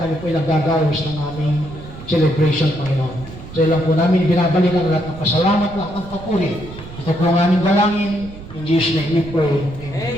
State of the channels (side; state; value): right; noise; rumble, 15 dB below the sound